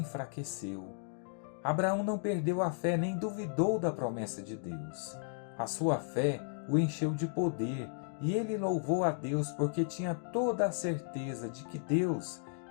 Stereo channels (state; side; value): silent; right; digital silence